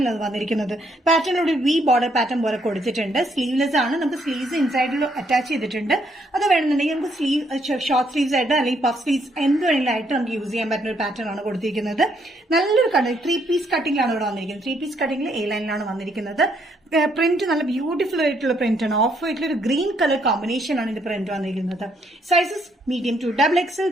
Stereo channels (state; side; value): normal; both; correlation 0.72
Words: വന്നിരിക്കുന്നത്. പാറ്റേൺ ഒരു വി ബോർഡർ പാറ്റേൺ പോലെ കൊടുത്തിട്ടുണ്ട്. സ്ലീവ്ലെസ് ആണ്. നമുക്ക് സ്ലീവ്സ് ഇൻസൈഡിൽ അറ്റാച്ച് ചെയ്തിട്ടുണ്ട്. അത് വേണമെന്നുണ്ടെങ്കിൽ നമുക്ക് സ്ലീവ് ഷോർട്ട് സ്ലീവ്സ് ആയിട്ട് അല്ലെങ്കിൽ പഫ് സ്ലീവ്സ് എന്ത് വേണമെങ്കിലായിട്ട് നമുക്ക് യൂസ് ചെയ്യാൻ പറ്റുന്ന ഒരു പാറ്റേൺ ആണ് കൊടുത്തിരിക്കുന്നത്. നല്ലൊരു കട്ടിങ് 3 പീസ് കട്ടിംഗിലാണ് ഇവിടെ വന്നിരിക്കുന്നത്. 3 പീസ് കട്ടിംഗിൽ എ ലൈനിലാണ് വന്നിരിക്കുന്നത്. പ്രിന്റ് നല്ല ബ്യൂട്ടിഫുൾ ആയിട്ടുള്ള പ്രിന്റ് ആണ്. ഓഫ് വൈറ്റിൽ ഒരു ഗ്രീൻ കളർ കോമ്പിനേഷൻ ആണ് ഇത് പ്രിന്റ് വന്നിരിക്കുന്നത്. Sizes medium to XXL.